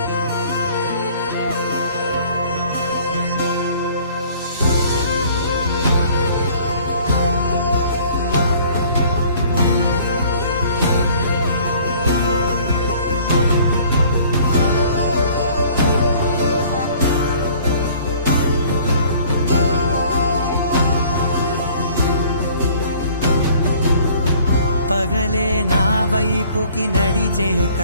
పగలే నా వైపుకి నడిచే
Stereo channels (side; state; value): both; inverted; correlation -0.53